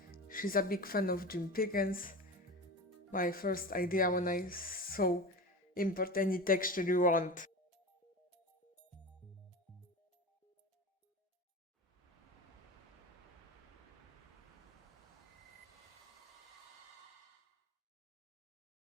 She's a big fan of Jim Pickens. My first idea when I saw import any texture you want.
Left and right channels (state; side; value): normal; both; correlation 0.29